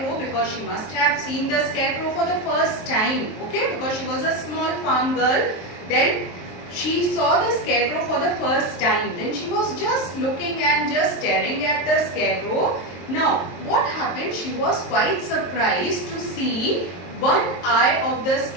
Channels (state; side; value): late; right; 23 ms